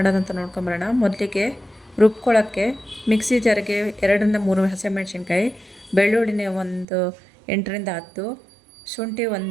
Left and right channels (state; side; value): drops out; left; at 6.9 s